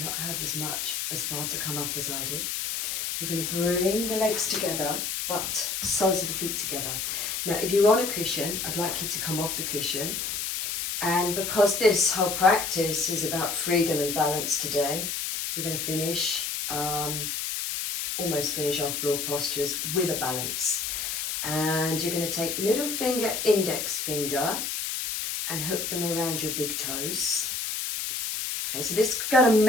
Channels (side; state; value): left; noise; hiss, 2 dB below the sound